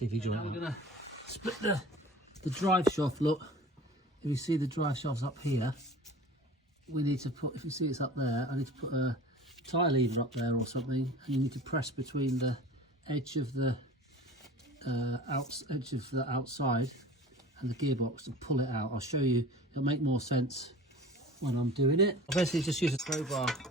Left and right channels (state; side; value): normal; both; correlation 0.40